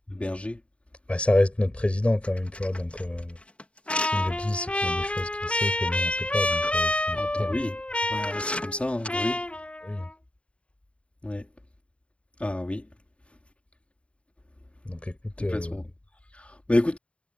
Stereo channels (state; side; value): late; right; 0.060 ms